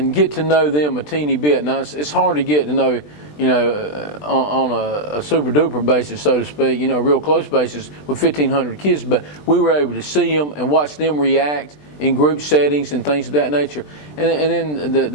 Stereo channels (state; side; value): late; right; 20 ms